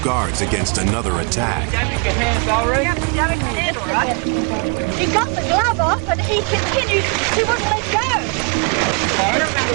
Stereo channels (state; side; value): quieter; left; 36.2 dB